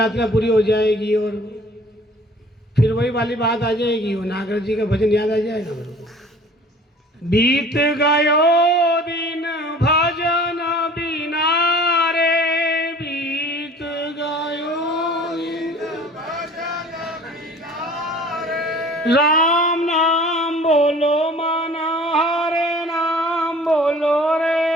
पूरी हो जाएगी और फिर वही वाली बात आ जाएगी, वो नागर जी का भजन याद आ जाएगा मेरे को। बीत गयो दिन भजन बिना रे, बीत गयो दिन भजन बिना रे। राम नाम बोलो माना, हरे नाम बोलो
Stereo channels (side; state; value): both; normal; correlation 0.47